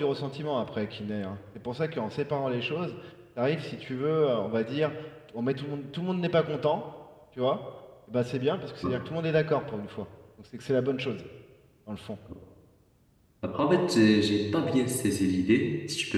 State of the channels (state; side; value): identical; both; correlation 1.00